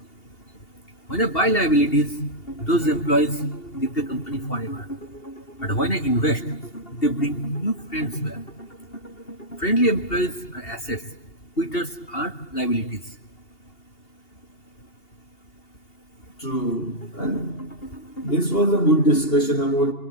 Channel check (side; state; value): right; late; 2.8 ms